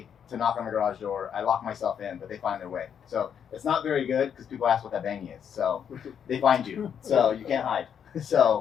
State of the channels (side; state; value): right; quieter; 8.1 dB